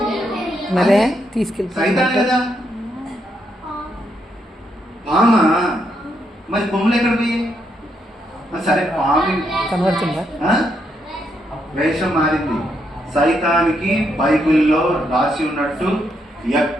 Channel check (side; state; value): both; normal; correlation 0.78